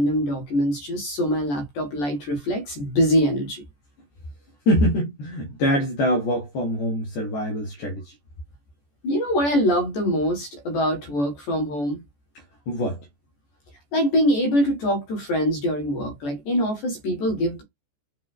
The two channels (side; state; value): right; late; 14 ms